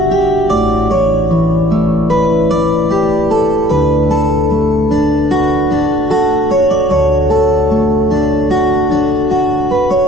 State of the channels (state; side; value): noise; left; rumble, 13 dB below the sound